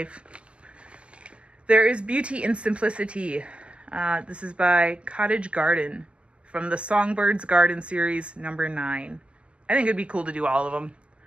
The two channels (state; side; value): late; left; 0.054 ms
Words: There is beauty in simplicity. This is by Cottage Garden from the Songbirds Garden series number 9. I think it'd be cool to do all of them.